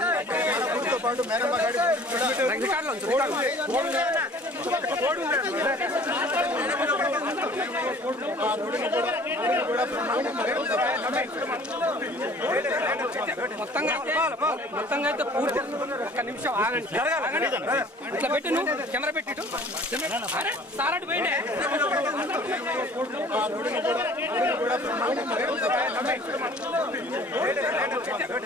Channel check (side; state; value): both; normal; correlation 0.50